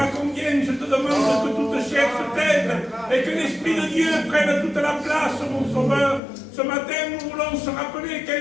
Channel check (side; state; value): right; drops out; at 6.2 s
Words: combien je te demande que toute chair se taise et que l'Esprit de Dieu prenne toute la place, mon Sauveur. Ce matin, nous voulons se rappeler